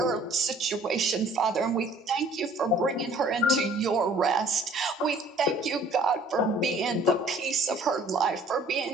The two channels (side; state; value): both; normal; correlation 0.55